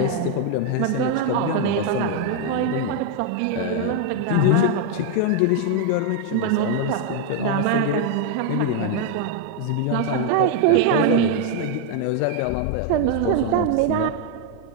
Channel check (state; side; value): different; both; correlation 0.01